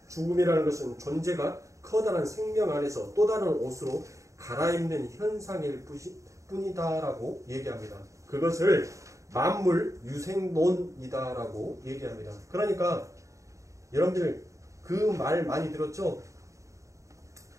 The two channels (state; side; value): late; left; 0.15 ms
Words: 죽음이라는 것은 존재가 커다란 생명 안에서 또 다른 옷으로 갈아입는 현상일 뿐이다라고 얘기합니다. 그것을 만물 유생론이다라고 얘기합니다. 그러니까 여러분들 그 말 많이 들었죠?